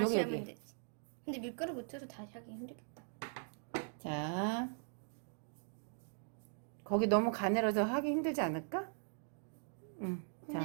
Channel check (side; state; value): left; silent; 51 dB below the other